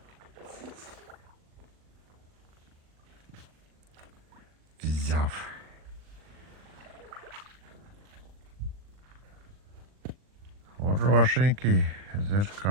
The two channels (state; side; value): late; left; 39 ms